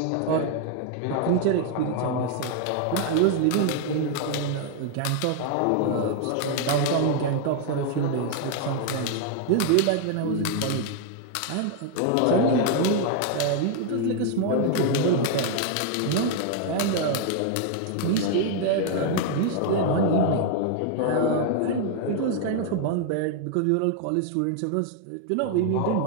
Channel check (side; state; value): both; different; correlation 0.00